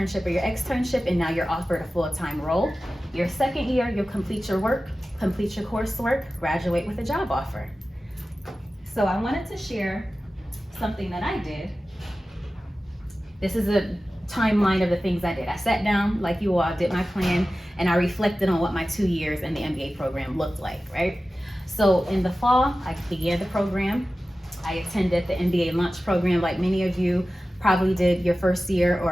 or your externship, and now you're offered a full-time role. Your second year, you'll complete your work, complete your coursework, graduate with a job offer. So I wanted to share something that I did. This is a timeline of the things I did. I sat down like you all, did my plan, and I reflected on what my 2 years in the MBA program looked like, right? So in the fall, I began the program. I attended the MBA lunch program like many of you probably did your first year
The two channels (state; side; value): normal; both; correlation 0.95